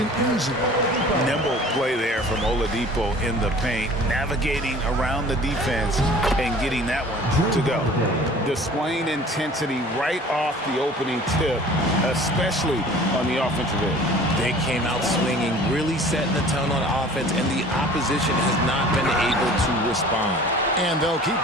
easy. Nimble play there from Oladipo in the paint, navigating around the defense and getting that one to go. Displaying intensity right off the opening tip, especially on the offensive end. They came out swinging, really setting the tone on offense, and the opposition has not been able to respond. And they'll keep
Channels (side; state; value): both; normal; correlation 0.46